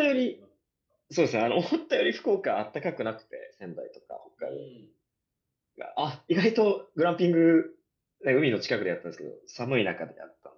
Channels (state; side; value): identical; both; correlation 1.00